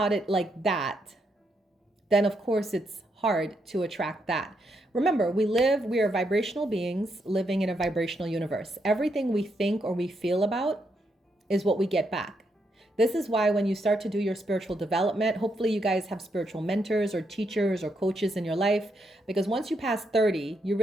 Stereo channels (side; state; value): both; normal; correlation 0.79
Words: it like that, then of course it's hard to attract that. Remember, we are vibrational beings living in a vibrational universe. Everything we think or we feel about is what we get back. This is why when you start to do your spiritual development, hopefully you guys have spiritual mentors or teachers or coaches in your life, because once you pass 30, you